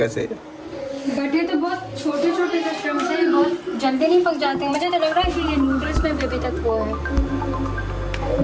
बट ये तो बहुत छोटे छोटे से श्रिम्प्स हैं, बहुत जल्दी नहीं पक जाते। मुझे तो लग रहा है कि ये नूडल्स में भी अभी तक वो है।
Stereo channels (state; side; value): identical; both; correlation 1.00